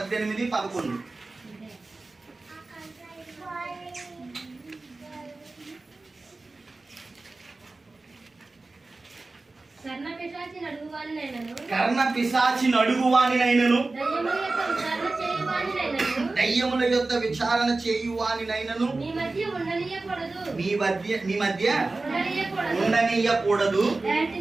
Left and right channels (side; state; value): left; quieter; 3.4 dB